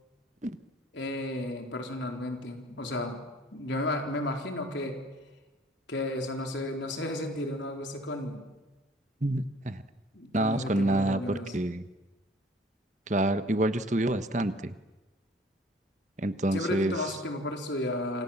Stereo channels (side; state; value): both; normal; correlation 0.52